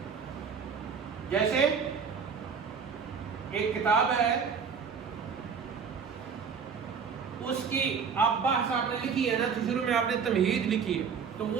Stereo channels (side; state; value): left; quieter; 6.2 dB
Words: جیسے ایک کتاب ہے، اس کی آپ بحث آپ نے لکھی ہے نا، تو شروع میں آپ نے تمہید لکھی ہے. تو